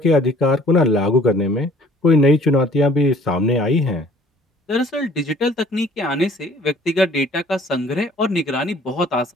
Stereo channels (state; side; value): normal; both; correlation 0.54